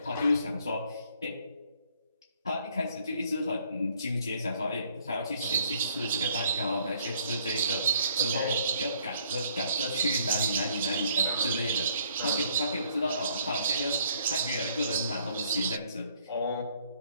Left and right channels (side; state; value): both; inverted; correlation -0.64